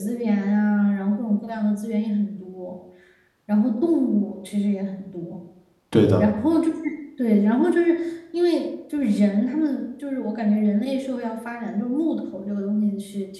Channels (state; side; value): identical; both; correlation 1.00